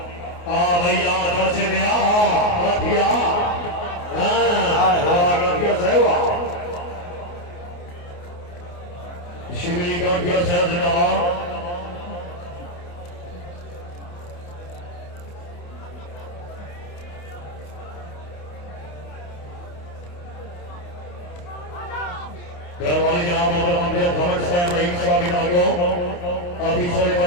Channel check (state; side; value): late; right; 28 ms